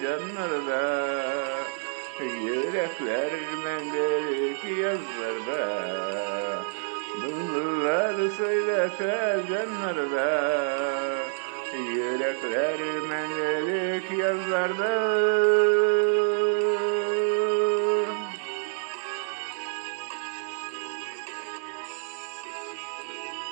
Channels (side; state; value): left; silent; 60 dB below the other